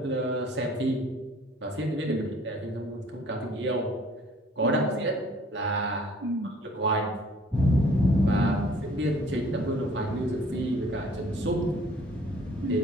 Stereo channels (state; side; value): normal; both; correlation 0.55